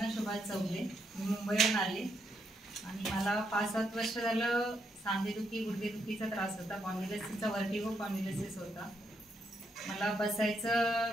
सुभाष चौगले. मी मुंबईहून आले आणि मला 5-7 वर्ष झालं सांधेदुखी गुडघेदुखीचा त्रास होता. स्पॉन्डिलोसिसचा वर्टिगो स्पॉन्डिलोसिस होता. मला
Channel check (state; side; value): normal; both; correlation 0.78